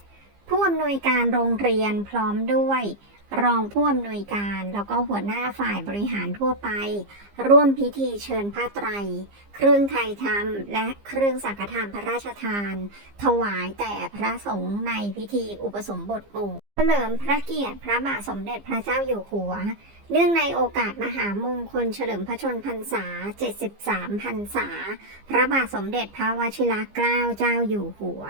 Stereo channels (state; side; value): late; left; 15 ms